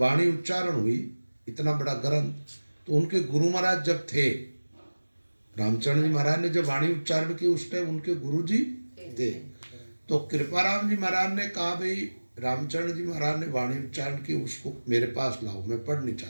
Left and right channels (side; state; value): both; inverted; correlation -1.00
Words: उच्चारण हुई, इतना बड़ा ग्रंथ, तो उनके गुरु महाराज जब थे, रामचरण जी महाराज ने जब वाणी उच्चारण की उस टाइम उनके गुरु जी थे। तो कृपाराम जी महाराज ने कहा भाई रामचरण जी महाराज ने वाणी उच्चारण की, उसको मेरे पास लाओ, मैं पढ़ नहीं